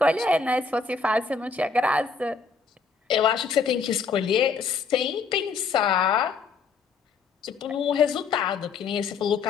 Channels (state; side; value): quieter; right; 5.0 dB